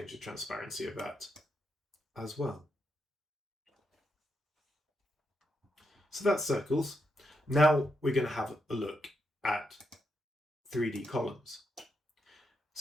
the transparency of that as well. So that's circles. Now we're going to have a look at 3D columns.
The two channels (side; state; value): both; normal; correlation 0.82